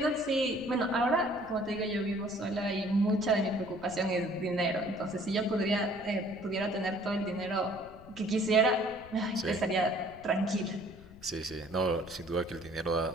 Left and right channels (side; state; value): left; noise; rumble, 20 dB below the sound